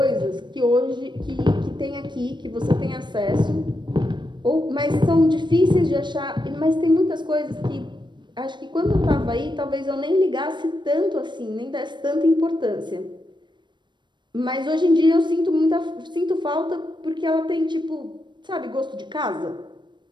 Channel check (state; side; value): late; left; 0.22 ms